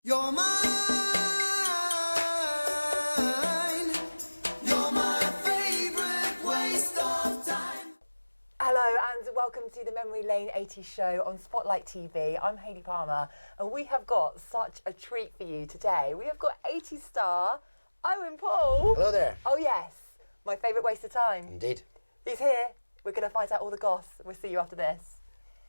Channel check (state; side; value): inverted; both; correlation -1.00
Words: You're mine, you're my favourite waste of time. Hello and welcome to the Memory Lane 80s show on Spotlight TV. I'm Hayley Palmer and we have got such a treat for you today. We have got 80s star Owen Paul. Hello there. Oh yes, my favourite waste of time. Indeed. He's here. We're going to find out all the goss. We'll see you after this.